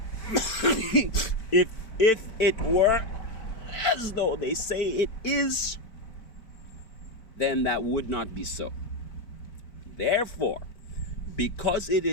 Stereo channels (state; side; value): late; right; 4.5 ms